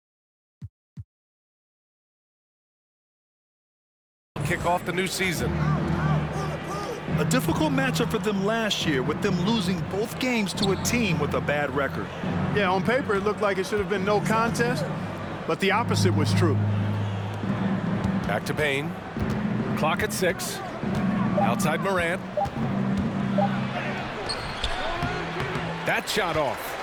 kick off the new season. A difficult matchup for them last year, with them losing both games to a team with a bad record. Yeah, on paper it looked like it should have been no contest, but the opposite was true. Back to Payne. Clock at 6. Outside Morant. That shot off.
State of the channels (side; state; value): both; identical; correlation 1.00